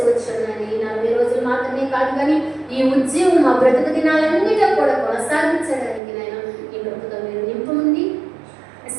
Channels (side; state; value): left; drops out; at 6.0 s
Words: వచ్చాను. ఈ 40 రోజులు మాత్రమే కాదు కానీ ఈ ఉద్యమం మా బ్రతుకు దినాలన్నిటో కూడా కొనసాగించడానికి నైనా ఈ ప్రభుత్వం మీరు నింపుండి